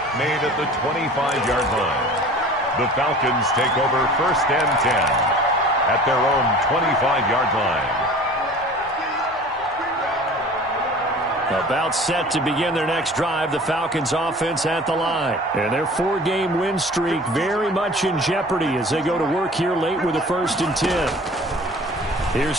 made at the 25-yard line. The Falcons take over first and 10 at their own 25-yard line. About set to begin their next drive, the Falcons offense at the line. And their 4-game win streak very much in jeopardy as they go to work here late with a 1st and 10.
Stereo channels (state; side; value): normal; both; correlation 0.43